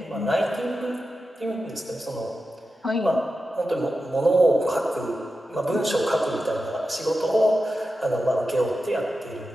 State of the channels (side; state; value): both; normal; correlation 0.91